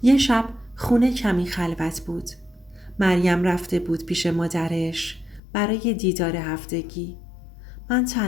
یه شب خونه کمی خلوت بود. مریم رفته بود پیش مادرش برای دیدار هفتگی. من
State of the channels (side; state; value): right; drops out; at 5.4 s